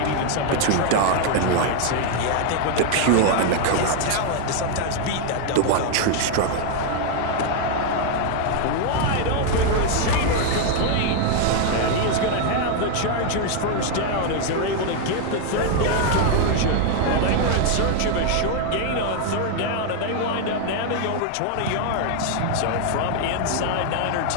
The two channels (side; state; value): both; different; correlation 0.00